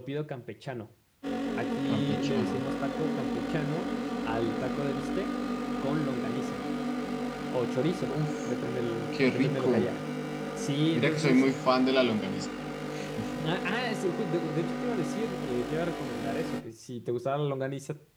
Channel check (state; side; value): identical; both; correlation 1.00